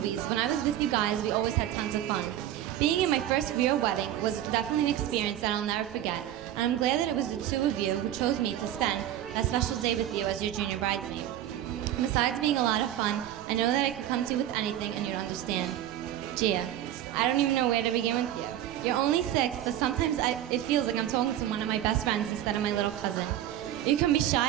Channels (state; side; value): quieter; left; 12.0 dB